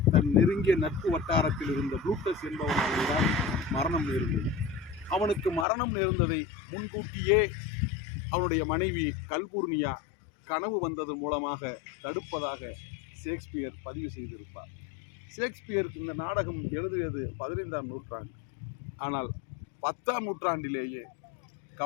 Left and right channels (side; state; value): right; drops out; at 5.7 s